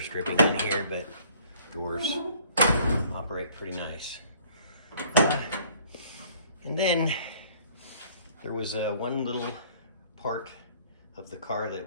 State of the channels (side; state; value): both; inverted; correlation -0.57